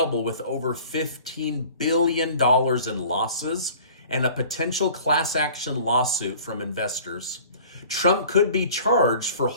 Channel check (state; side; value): inverted; both; correlation -0.47